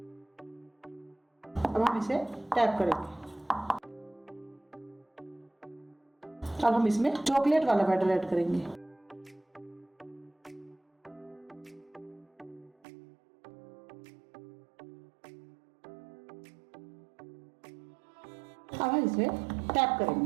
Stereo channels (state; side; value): drops out; left; at 12.7 s